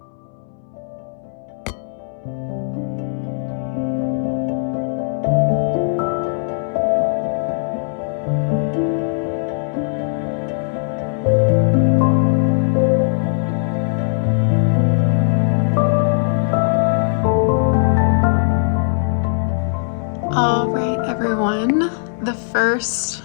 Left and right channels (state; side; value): silent; right; 66 dB below the other